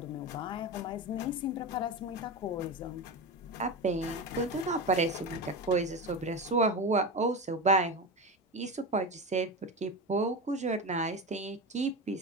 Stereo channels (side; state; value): both; normal; correlation 0.21